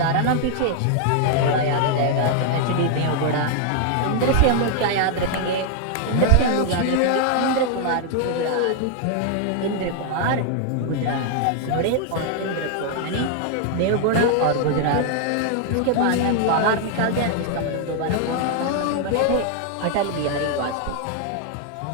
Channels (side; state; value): both; different; correlation 0.00